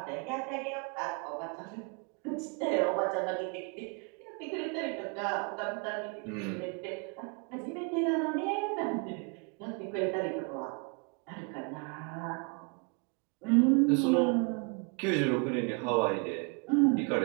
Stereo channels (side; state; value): left; quieter; 34.8 dB